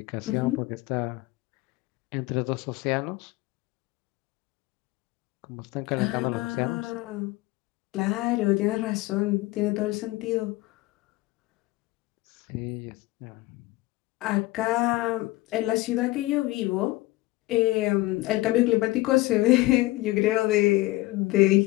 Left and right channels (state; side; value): quieter; right; 19.7 dB